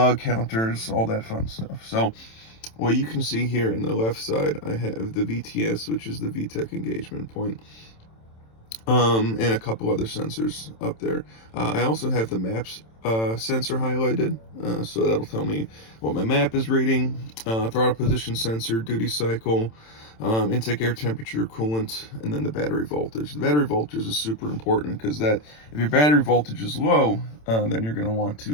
counters, all that fun stuff. So what you can see here in the left side, I have the VTS, which is the Vtec engagement point, and a couple other sensors up there. I also have the maps sensor highlighted, so that'll tell me what my map is reading, throttle position sensor, duty cycle, intake air temperature, coolant, and then the battery voltage. The battery voltage is super important because that if your battery voltage is low, then you're going to want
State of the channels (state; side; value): late; right; 27 ms